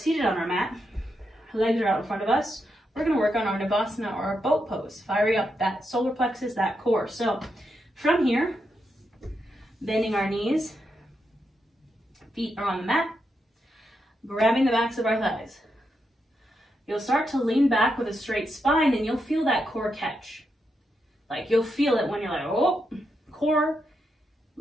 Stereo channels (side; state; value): both; normal; correlation 0.83